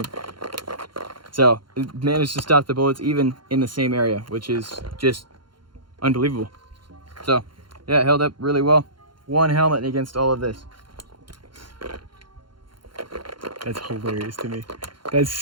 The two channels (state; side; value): late; left; 0.72 ms